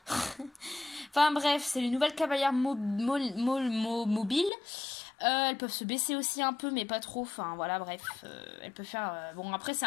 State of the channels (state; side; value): drops out; right; at 4.5 s